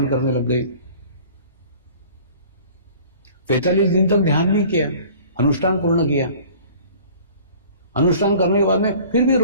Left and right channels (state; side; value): inverted; both; correlation -0.48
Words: करने लग गई। 45 दिन तक ध्यान भी किया, अनुष्ठान पूर्ण किया। अनुष्ठान करने के बाद में फिर भी